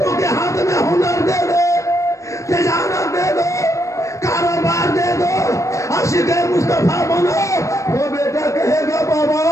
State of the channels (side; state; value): right; late; 0.15 ms